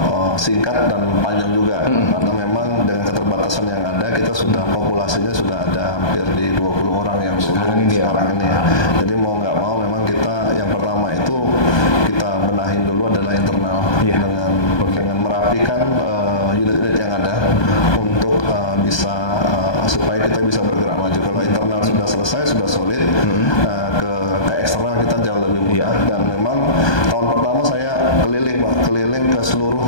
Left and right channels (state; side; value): late; right; 1.2 ms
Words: singkat dan panjang juga, karena memang dengan keterbatasan yang ada kita sudah populasinya sudah ada hampir di 20 orang yang sekarang ini ya. Jadi mau nggak mau memang kita yang pertama itu kita benahin dulu adalah internal dengan merapikan unit-unit yang ada untuk bisa supaya kita bisa bergerak maju. Kalau internal sudah selesai, sudah solid, ke eksternal kita jauh lebih mudah. Dan memang tahun pertama saya keliling ke seluruh